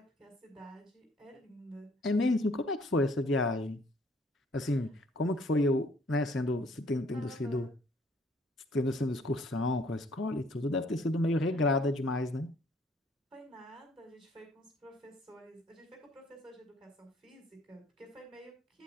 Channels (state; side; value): normal; both; correlation 0.61